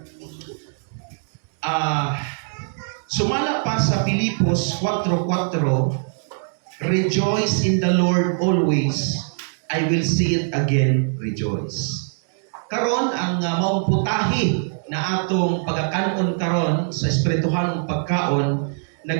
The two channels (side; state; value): left; silent; 64 dB below the other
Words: Sumala pa sa Filipos 4:4, rejoice in the Lord always. I will say it again, rejoice. Karon ang maong putahi na atong pagakanon karon sa espirituhalong pagkaon